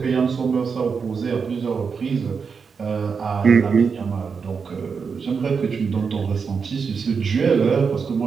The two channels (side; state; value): left; quieter; 5.7 dB